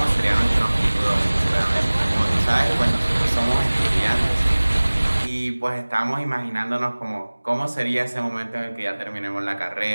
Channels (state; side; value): inverted; both; correlation -1.00